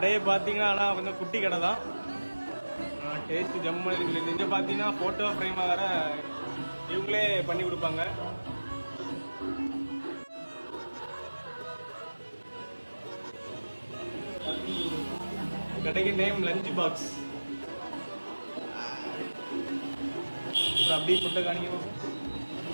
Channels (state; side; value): inverted; both; correlation -1.00